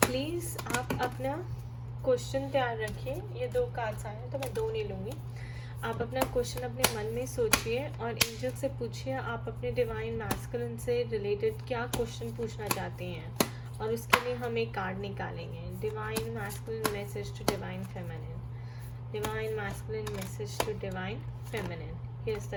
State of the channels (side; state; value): both; identical; correlation 1.00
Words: आप अपना क्वेश्चन तैयार रखिए। ये 2 कार्ड्स आए हैं तो मैं 2 नहीं लूँगी। आप अपना क्वेश्चन अपने मन में सोचिए और एंजल से पूछिए आप अपने डिवाइन मैस्कुलिन से रिलेटेड क्या क्वेश्चन पूछना चाहते हैं, और उसके लिए हम एक कार्ड निकालेंगे. Divine masculine message to divine feminine. Divine masculine message to divine feminine. Here's